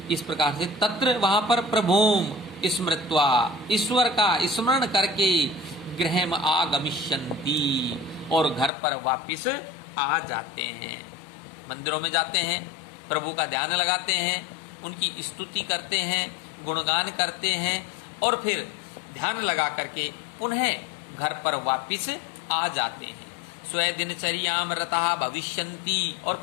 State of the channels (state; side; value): drops out; right; at 8.7 s